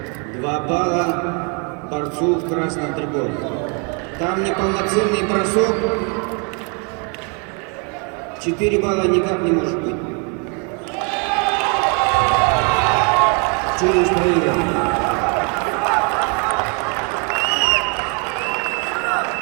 2 балла борцу в красном триколе. Там неполноценный бросок. 4 балла никак не может быть. Челлендж проигран.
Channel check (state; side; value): quieter; left; 36.1 dB